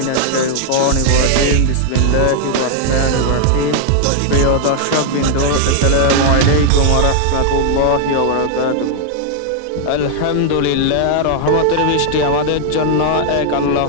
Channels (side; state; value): both; different; correlation 0.00